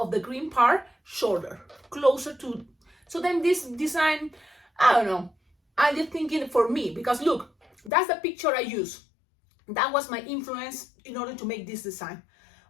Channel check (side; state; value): right; drops out; at 7.9 s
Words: the green part shorter, closer to, so then this design, I don't know, I'm just thinking for me, because look, that's the picture I use. That was my influence in order to make this design.